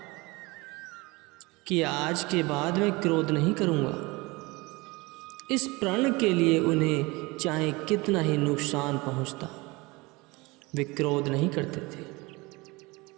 कि आज के बाद मैं क्रोध नहीं करूँगा। इस प्रण के लिए उन्हें चाहे कितना ही नुकसान पहुँचता, वे क्रोध नहीं करते थे।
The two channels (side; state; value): left; quieter; 23.8 dB